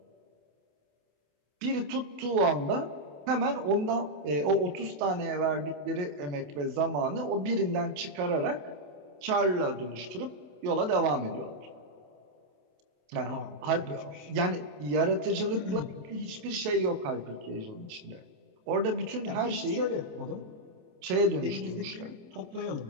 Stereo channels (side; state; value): left; late; 27 ms